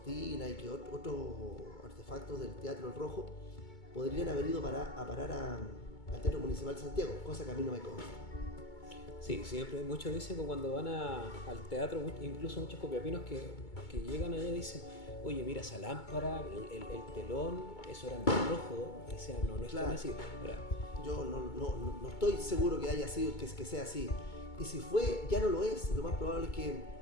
y que otros artefactos del Teatro El Rojo podrían haber ido a parar al Teatro Municipal de Santiago, cosa que a mí no me consta. Sí, siempre muchos dicen que cuando van al teatro, incluso muchos copiapinos que llegan allá dicen: oye, mira esa lámpara, el telón, eso era en rojo, que sea, no es claro. Tan así. Yo no estoy seguro que haya sido, que sea así. Y si fue, ya no lo es. Lo más probable es que,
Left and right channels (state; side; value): late; right; 2.2 ms